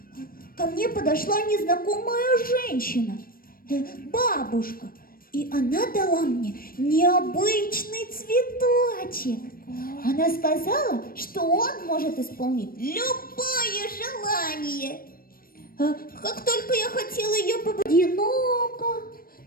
Ко мне подошла незнакомая женщина, бабушка, и она дала мне необычный цветочек. Она сказала, что он может исполнить любое желание. Как только я хотела ее одиноко,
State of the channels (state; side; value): late; right; 0.42 ms